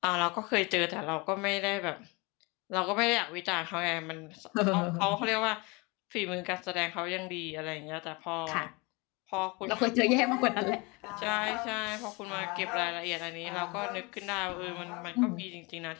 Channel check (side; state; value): right; quieter; 27.2 dB